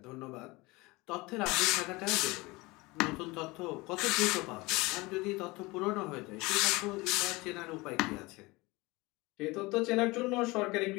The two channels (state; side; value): quieter; right; 22.9 dB